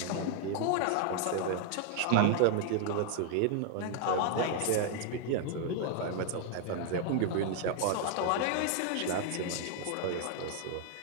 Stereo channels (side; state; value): both; different; correlation 0.00